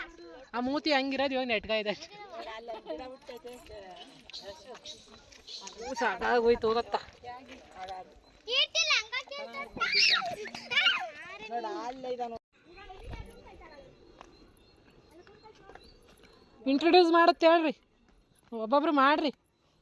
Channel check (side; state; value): both; identical; correlation 1.00